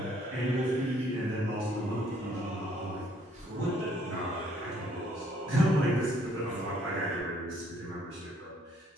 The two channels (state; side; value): normal; both; correlation 0.65